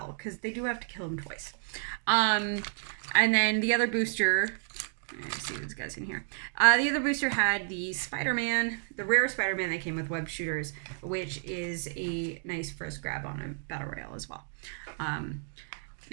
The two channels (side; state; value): left; silent; digital silence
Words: because they do have to kill him twice. And then the other booster... Let's see what this guy's in here. The other booster had the Spider-Man, the rare Spider-Man that came with web shooters, which is a nice first grab on a Battle Royale as well.